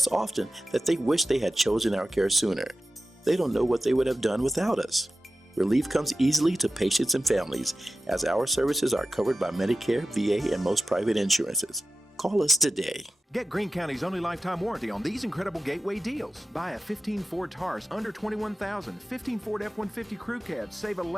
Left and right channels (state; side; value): normal; both; correlation 0.93